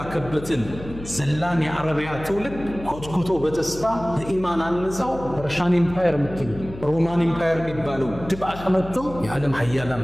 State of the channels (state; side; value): noise; left; hum, 14 dB below the sound